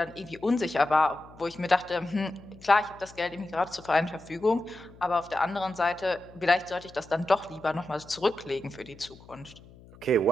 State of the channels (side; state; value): left; noise; hum, 22 dB below the sound